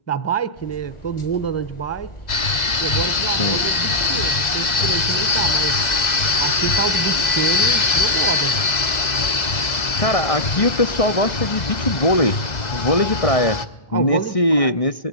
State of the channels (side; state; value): right; late; 2.0 ms